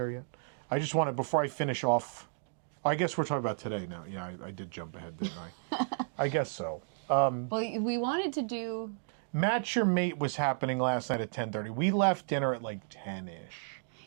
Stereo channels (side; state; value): left; silent; digital silence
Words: yet. I just wanted before I finish off. I guess we're talking about today now. Yeah, I did jump ahead, didn't I? I guess so. Well, we wanted to do. Match Your Mate was happening last night at 10:30. We left dinner at like 10-ish.